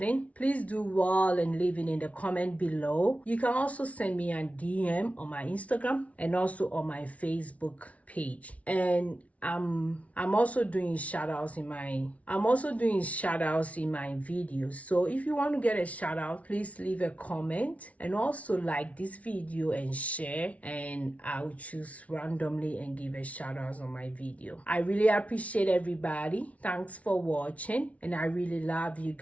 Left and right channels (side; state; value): right; late; 0.066 ms